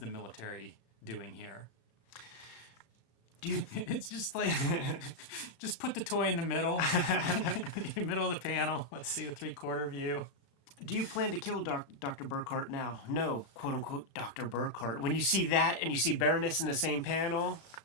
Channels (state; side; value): late; right; 35 ms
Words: military doing here? It's just like, just put the toy in the middle, middle of the panel. Let's see the 3/4 view. Do you plan to kill Dr. Burkhart now? No, quote unquote, Dr. Burkhart. When you see that and you see Baroness in the same panel,